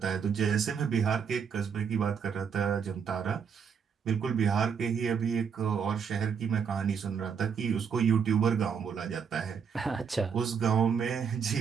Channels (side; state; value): left; quieter; 6.7 dB